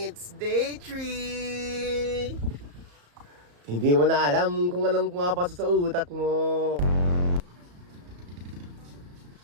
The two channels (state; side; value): late; left; 34 ms